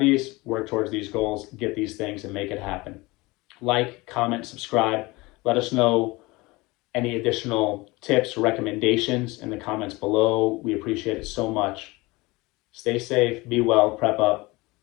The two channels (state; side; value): quieter; right; 22.6 dB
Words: work towards these goals, get these things and make it happen. Like, comment, subscribe. Let us know any additional tips or recommendations in the comments below. We appreciate it so much. Stay safe, be well, prep up.